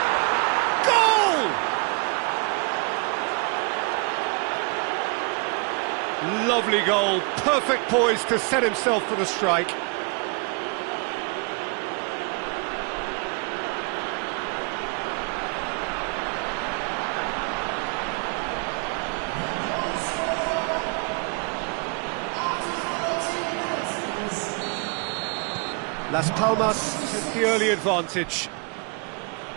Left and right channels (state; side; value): quieter; left; 34.4 dB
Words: Goal! Lovely goal, perfect poise to set himself for the strike. Las Palmas take the early advantage.